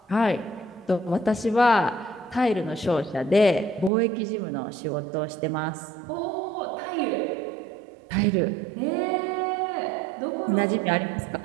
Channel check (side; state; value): left; drops out; at 3.9 s